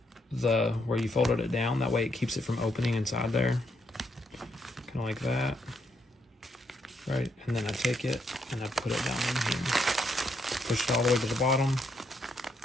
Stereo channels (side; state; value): both; normal; correlation 0.76